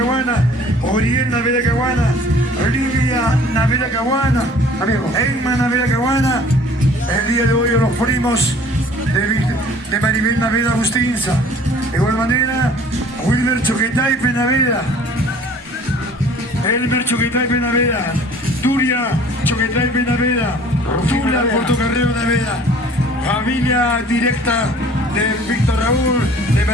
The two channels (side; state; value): both; normal; correlation 0.51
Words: Oriel Naveda Caguana, Olivia Naveda Caguana, Emma Naveda Caguana. El día de hoy los primos de Maribel Naveda Agustinza. De igual manera, Wilmer Choquetaipe Naveda, Elmer Choquetaipe Naveda, Turia Choquetaipe Naveda, Tula Portocarrero Naveda, familia directa de Víctor Raúl de